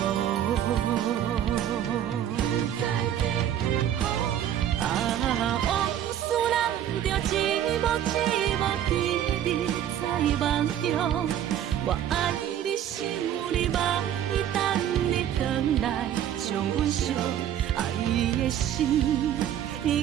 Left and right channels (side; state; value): left; quieter; 10.5 dB